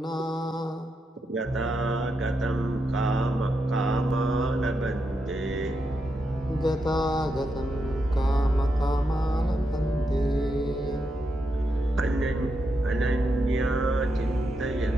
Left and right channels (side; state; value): both; normal; correlation 0.84